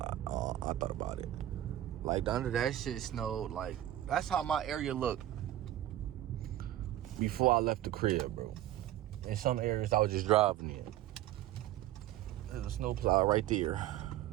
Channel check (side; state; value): left; quieter; 13.3 dB